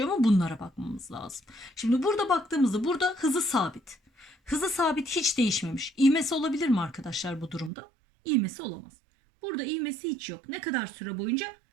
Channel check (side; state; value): left; drops out; at 7.7 s